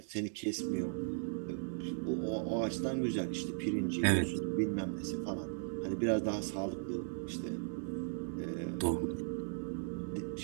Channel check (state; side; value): silent; left; digital silence